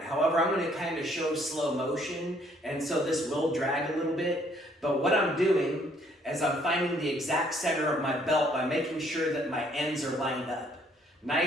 However, I'm going to kind of show slow motion, and so this will drag a little bit. But what I'm doing is I'm finding the exact center of my belt by making sure that my ends are lined up.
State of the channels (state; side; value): normal; both; correlation 0.65